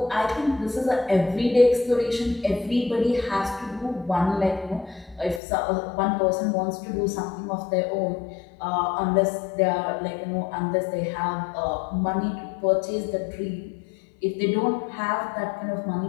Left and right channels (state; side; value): drops out; right; at 5.4 s